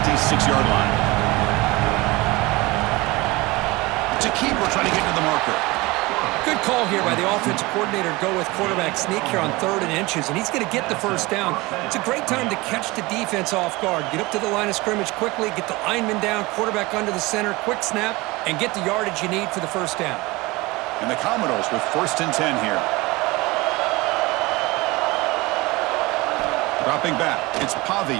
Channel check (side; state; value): left; quieter; 22.4 dB